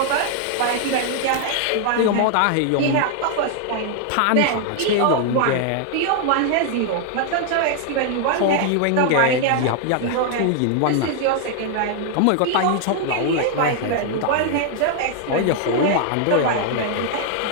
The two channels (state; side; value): different; both; correlation 0.00